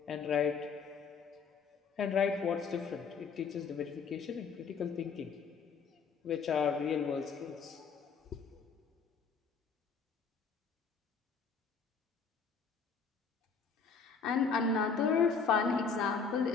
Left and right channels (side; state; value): right; quieter; 5.6 dB